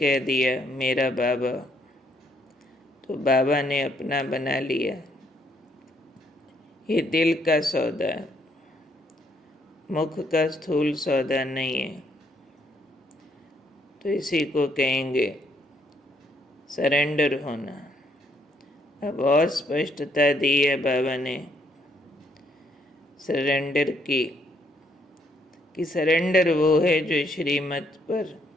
दिया मेरा बाबा, तो बाबा ने अपना बना लिया। ये दिल का सौदा है, मुख का स्थूल सौदा नहीं है। तो इसी को कहेंगे सरेंडर होना। अब और स्पष्टता दी है बाबा ने सरेंडर की, कि सरेंडर वो है जो श्रीमत पर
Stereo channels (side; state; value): both; normal; correlation 0.71